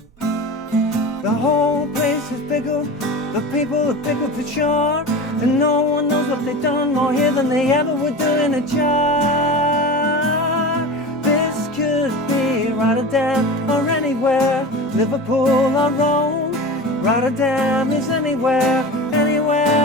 The whole place is pickled, the people are pickled for sure, and no one knows what they've done more here than they ever would do in a jar. This could be Rotterdam or anywhere, Liverpool or Rome. Rotterdam is anywhere,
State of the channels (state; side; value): normal; both; correlation 0.31